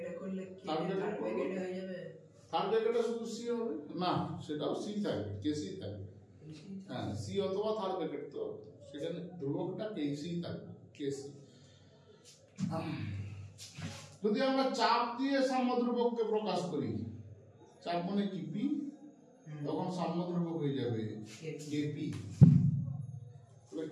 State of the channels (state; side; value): identical; both; correlation 1.00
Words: করলে কি থার্ড ব্র্যাকেটে হয়ে যাবে? থার্ড ব্র্যাকেটে শুধু সি হবে না, সেটাও সি থাকবে, কেসি থাকবে। হ্যাঁ, সি অথবা থার্ড ব্র্যাকেট, তো সেখানে ধ্রুবকটা কেসি থাকবে, কেসি। যদি আমরা চাপ দিয়ে সাম্যদ্রব্যককে প্রকাশ করি, চাপ মানে কি পি, তখন সাম্যদ্রব্যক হয়ে যাবে কেপি। তাহলে